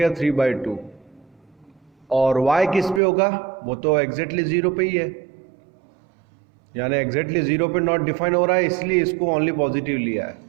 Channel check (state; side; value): drops out; left; at 3.0 s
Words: 3/2, और y किस पे होगा, वो तो एग्जैक्टली 0 पे ही है, यानी एग्जैक्टली 0 पे नॉट डिफाइन हो रहा है, इसलिए इसको ओनली पॉजिटिव लिया है।